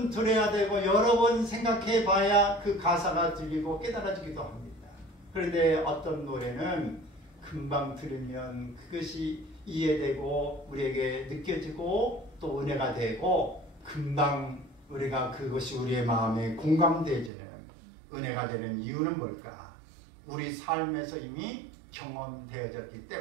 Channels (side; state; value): left; drops out; at 17.3 s